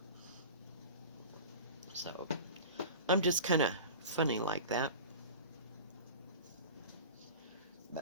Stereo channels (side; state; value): both; inverted; correlation -0.35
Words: So, I'm just kind of funny like that.